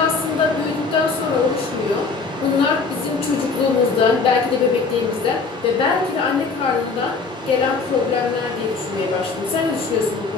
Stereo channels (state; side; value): quieter; right; 4.5 dB